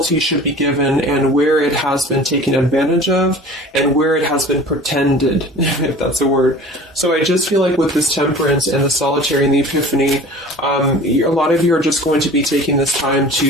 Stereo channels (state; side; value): normal; both; correlation 0.43